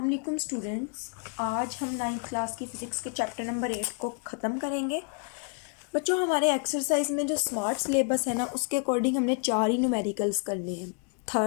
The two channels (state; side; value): quieter; right; 38.5 dB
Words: वालेकुम स्टूडेंट्स, आज हम 9th क्लास की फ़िज़िक्स के चैप्टर नंबर 8 को ख़त्म करेंगे। बच्चों, हमारे एक्सरसाइज में जो स्मार्ट सिलेबस है ना, उसके अकॉर्डिंग हमने 4 ही न्यूमेरिकल्स करने हैं,